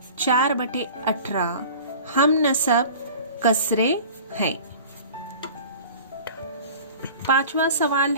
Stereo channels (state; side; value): inverted; both; correlation -0.41